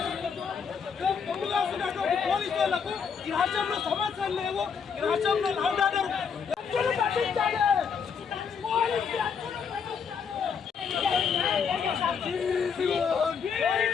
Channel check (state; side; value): quieter; right; 6.4 dB